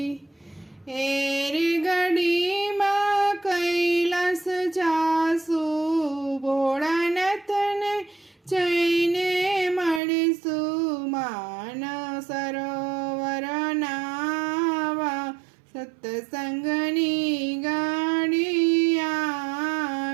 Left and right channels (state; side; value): drops out; left; at 10.0 s